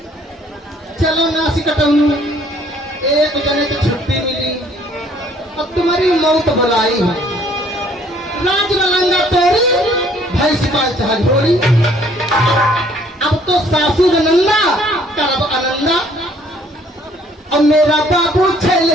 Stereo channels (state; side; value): normal; both; correlation 0.60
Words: चलो नासी कटाऊ एक जने तो छुट्टी मिली अब तुम्हारी मौत बुलाई है राज लंगा तोरी भाई सिपाही चाह ढोरी अब तो सासू नंदा करब आनंदा और मेरा बाबू छेल